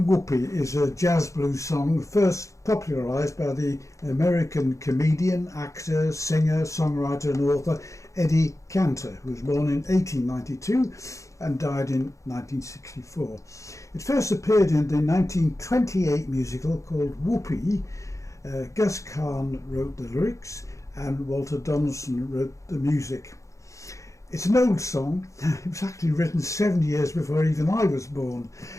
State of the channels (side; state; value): right; late; 0.15 ms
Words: Whoopee is a jazz blues song first popularised by the American comedian, actor, singer, songwriter and author Eddie Cantor, who was born in 1892 and died in 1964. It first appeared in the 1928 musical called Whoopee. Gus Kahn wrote the lyrics and Walter Donaldson wrote the music. It's an old song. It was actually written 7 years before even I was born,